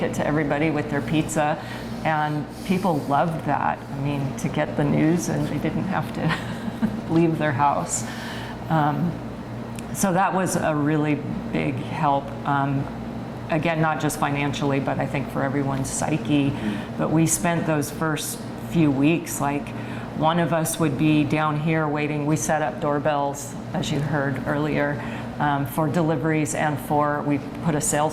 it to everybody with their pizza. And people loved that. I mean, to get the news, and they didn't have to leave their house. So that was a really big help. Again, not just financially, but I think for everyone's psyche. But we spent those first few weeks, one of us would be down here waiting. We set up doorbells, as you heard earlier, for deliveries, and we put a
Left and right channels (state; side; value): identical; both; correlation 1.00